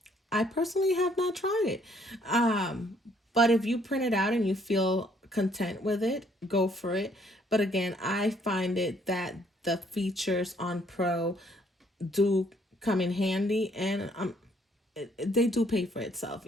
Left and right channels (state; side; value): normal; both; correlation 0.65